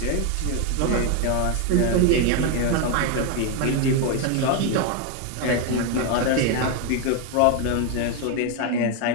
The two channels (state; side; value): different; both; correlation 0.01